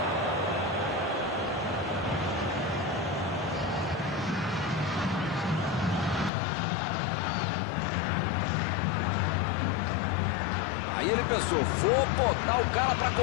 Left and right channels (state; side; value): drops out; right; at 6.3 s